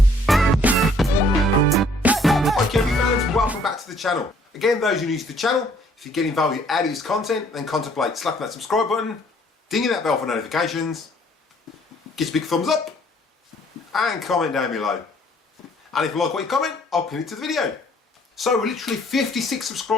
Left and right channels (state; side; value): normal; both; correlation 0.61